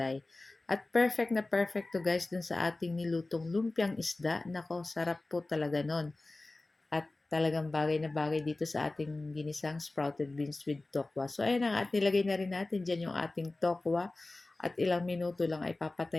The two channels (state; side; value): quieter; right; 3.0 dB